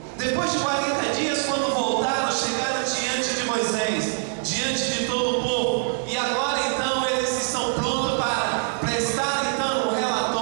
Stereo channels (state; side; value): silent; left; digital silence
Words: Depois de 40 dias, quando voltaram, chegaram diante de Moisés, diante de todo o povo, e agora então eles estão prontos para prestar então um